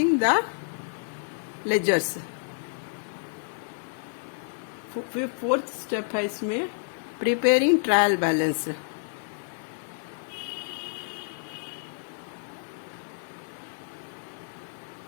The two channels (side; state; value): right; silent; 59 dB below the other